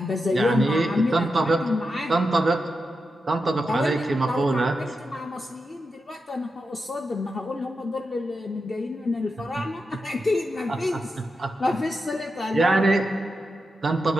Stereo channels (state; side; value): normal; both; correlation 0.88